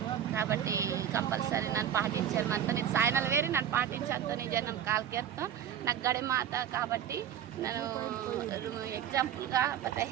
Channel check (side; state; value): left; quieter; 9.9 dB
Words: కాబట్టి కంపల్సరీ నన్ను పాటించారు మనతో ఇది సాయనలు వేరి నన్ను పాటించడంతో నిజం నన్ను కాల్కేస్తాం నాకు గడే మాత కాబట్టి నేను ఎగ్జాంపుల్గా పత